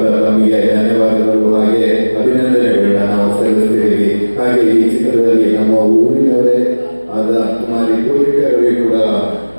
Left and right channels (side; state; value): both; inverted; correlation -1.00